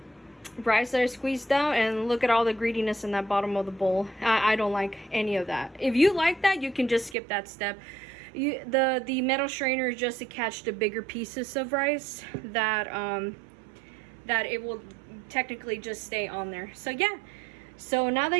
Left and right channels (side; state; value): left; drops out; at 7.2 s